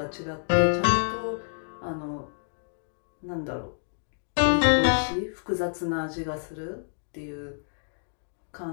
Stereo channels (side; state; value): right; silent; digital silence